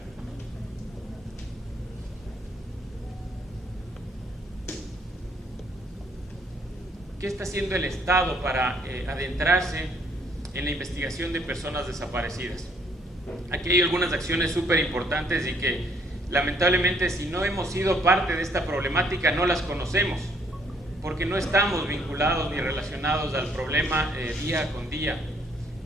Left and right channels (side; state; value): both; normal; correlation 0.67